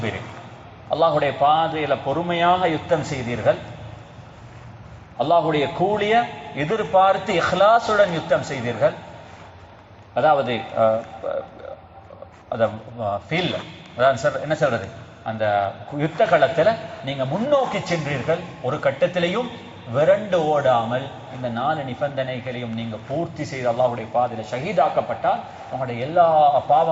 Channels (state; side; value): identical; both; correlation 1.00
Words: அல்லாஹ்வுடைய பாதையில பொறுமையாக யுத்தம் செய்தீர்கள், அல்லாஹ்வுடைய கூலிய எதிர்பார்த்து இஹ்லாசுடன் யுத்தம் செய்தீர்கள். அதாவது என்ன சொல்றது, அந்த யுத்த களத்துல நீங்க முன்னோக்கி சென்றீர்கள், ஒரு கட்டத்திலையும் விரண்டு ஓடாமல் இந்த 4 நிபந்தனைகளையும் நீங்க பூர்த்தி செய்து அல்லாஹ்வுடைய பாதையில ஷஹீதாக்கப்பட்டால் உங்களுடைய எல்லா